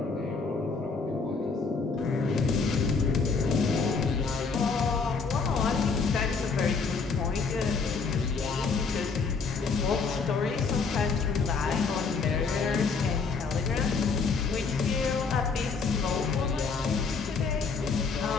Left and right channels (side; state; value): right; quieter; 4.8 dB